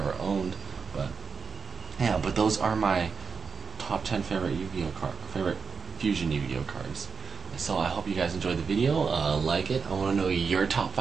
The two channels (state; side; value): quieter; left; 5.3 dB